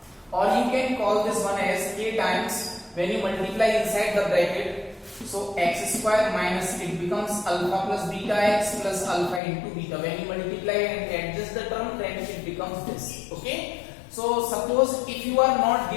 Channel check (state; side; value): drops out; right; at 9.4 s